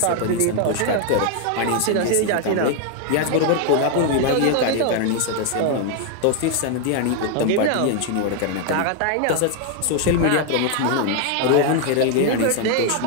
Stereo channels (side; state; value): both; different; correlation 0.00